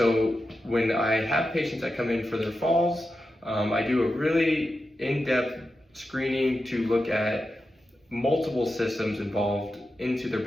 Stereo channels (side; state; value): both; normal; correlation 0.90